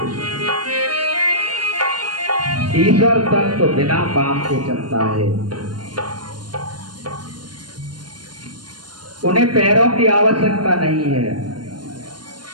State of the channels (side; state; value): left; late; 0.71 ms